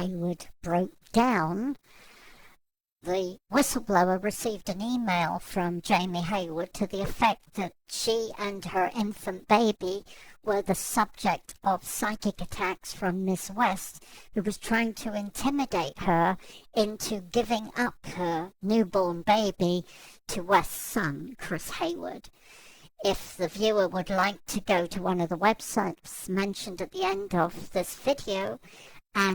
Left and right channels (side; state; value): both; identical; correlation 1.00